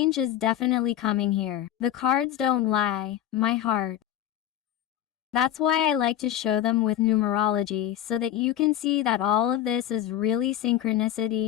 is definitely coming here. The cards don't lie, my heart. That's why I like to show them with numerology so that you can see that all of this is really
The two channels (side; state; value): right; quieter; 11.6 dB